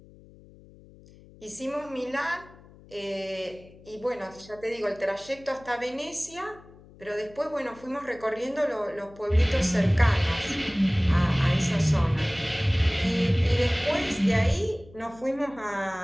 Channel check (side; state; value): left; noise; hum, 23 dB below the sound